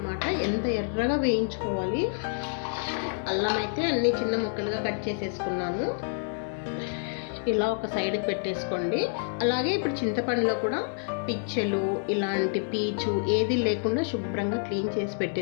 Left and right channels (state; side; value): silent; right; 59 dB below the other